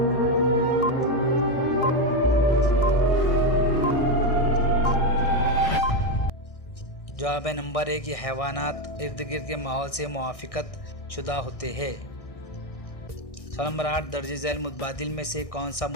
जवाब है नंबर 1, ये हैवानात इर्द गिर्द के माहौल से मुआफ़िकत शुदा होते हैं। सवाल नंबर 8, दर्ज झैल मुतबादिल में से कौन सा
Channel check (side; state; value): right; late; 1.6 ms